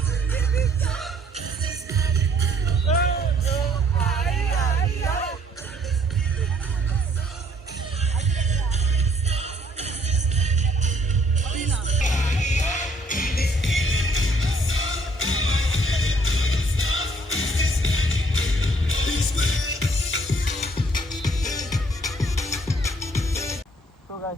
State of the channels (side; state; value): both; normal; correlation 0.63